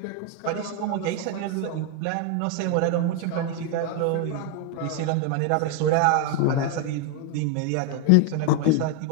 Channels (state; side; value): different; both; correlation 0.01